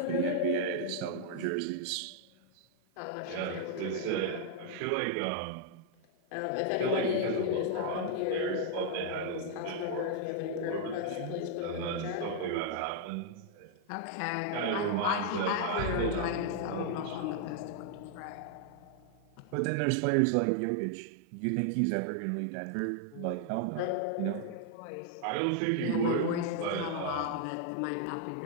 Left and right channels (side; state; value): both; different; correlation -0.01